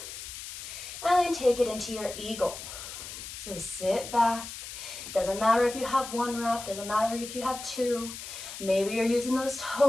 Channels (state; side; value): noise; left; hiss, 10 dB below the sound